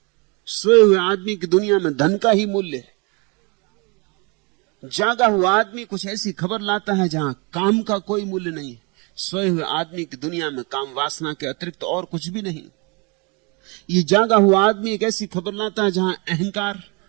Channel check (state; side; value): quieter; left; 30.6 dB